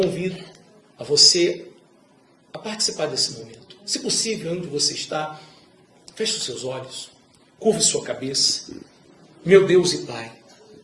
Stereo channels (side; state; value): both; identical; correlation 1.00